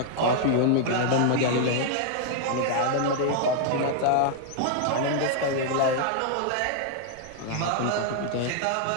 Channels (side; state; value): both; different; correlation 0.00